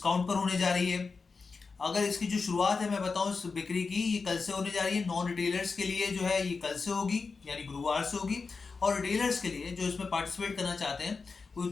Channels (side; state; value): right; quieter; 4.6 dB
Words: पर होने जा रही है। अगर इसकी जो शुरुआत है मैं बताऊं इस बिक्री की, ये कल से होने जा रही है। नॉन रिटेलर्स के लिए जो है ये कल से होगी, यानी गुरुवार से होगी, और रिटेलर्स के लिए जो इसमें पार्टिसिपेट करना चाहते हैं